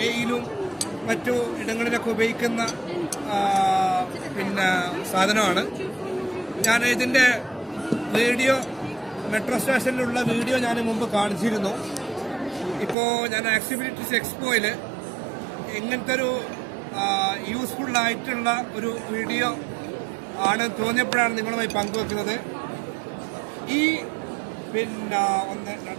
മറ്റു ഇടങ്ങളിലൊക്കെ ഉപയോഗിക്കുന്ന സാധനമാണ്. ഞാൻ ഇതിൻ്റെ വീഡിയോ മെട്രോ സ്റ്റേഷനിലുള്ള വീഡിയോ ഞാൻ മുമ്പ് കാണിച്ചിരുന്നു. ഇപ്പോൾ ഞാൻ ആക്സിബിലിറ്റീസ് എക്സ്പോയിൽ ഇങ്ങനത്തെ ഒരു യൂസ്ഫുള്ളായിട്ടുള്ള ഒരു വീഡിയോ ആണ് തോന്നിയപ്പോഴാണ് നിങ്ങളുമായി പങ്കുവെക്കുന്നത്. ഈ 1 2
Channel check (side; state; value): left; drops out; at 13.0 s